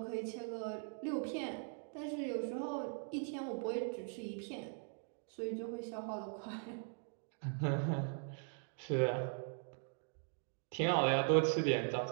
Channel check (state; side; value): silent; left; 51 dB below the other